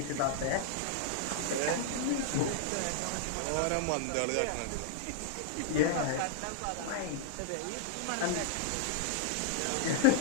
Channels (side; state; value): both; different; correlation 0.00